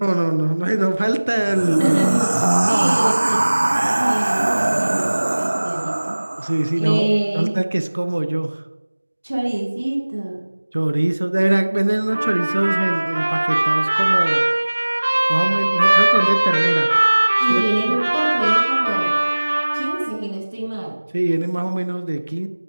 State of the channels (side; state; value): both; inverted; correlation -1.00